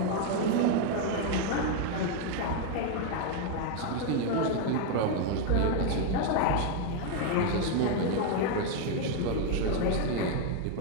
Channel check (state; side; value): different; both; correlation 0.01